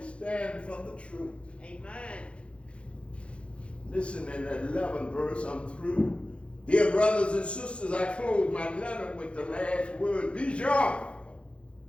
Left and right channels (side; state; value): right; late; 0.059 ms